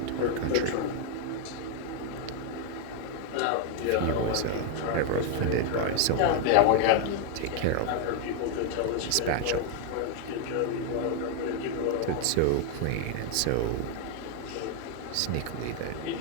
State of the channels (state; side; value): different; both; correlation 0.00